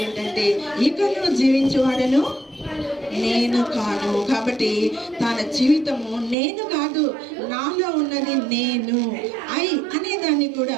ఏంటంటే, ఇకను జీవించేవాడను నేను కాను. కాబట్టి తన జీవితము నేను కాదు, నాలో ఉన్నది నేను, అనే దాన్ని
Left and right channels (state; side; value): drops out; left; at 6.4 s